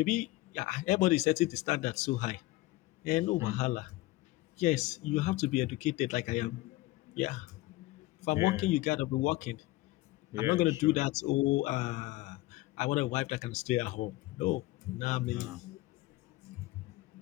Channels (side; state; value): right; quieter; 19.0 dB